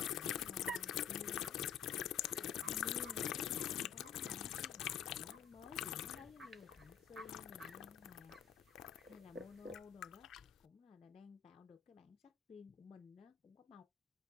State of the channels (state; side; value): quieter; right; 8.8 dB